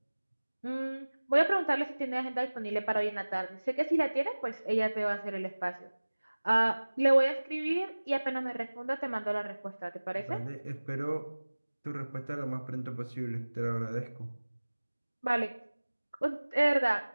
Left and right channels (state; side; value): inverted; both; correlation -1.00